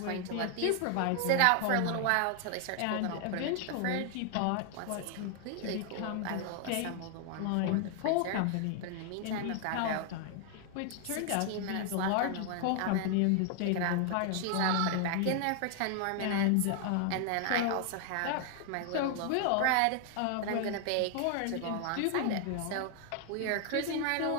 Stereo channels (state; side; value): different; both; correlation 0.00